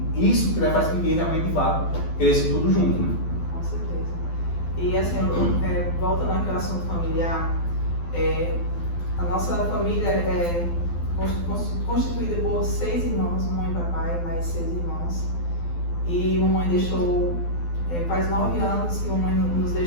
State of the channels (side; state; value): right; late; 12 ms